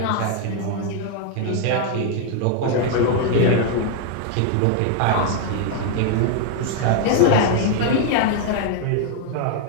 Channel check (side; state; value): both; different; correlation 0.00